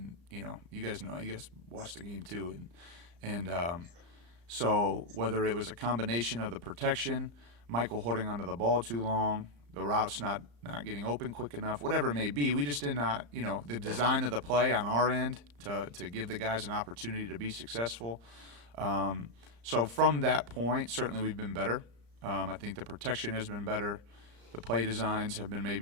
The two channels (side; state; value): left; late; 34 ms